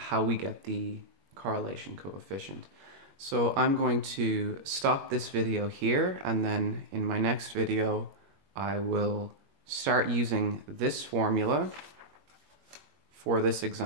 we get the correlation coefficient. So I'm going to stop this video here, and then in my next video I will start using this formula for this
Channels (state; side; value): late; left; 21 ms